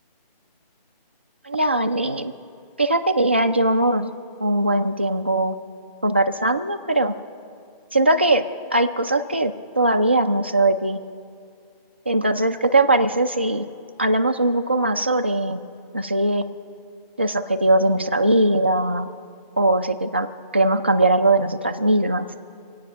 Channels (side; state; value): both; inverted; correlation -0.66